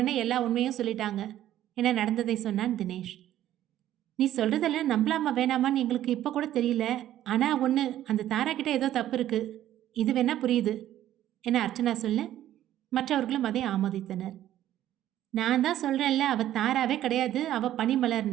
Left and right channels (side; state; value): left; quieter; 12.6 dB